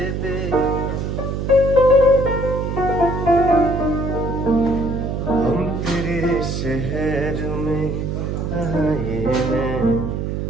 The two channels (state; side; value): noise; right; hum, 2 dB below the sound